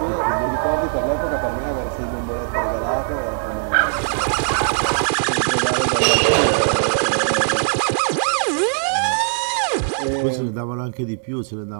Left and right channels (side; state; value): left; silent; digital silence